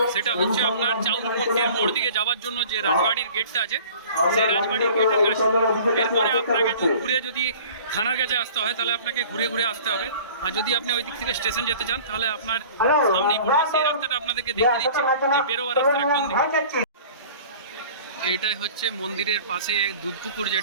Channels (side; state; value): both; inverted; correlation -0.45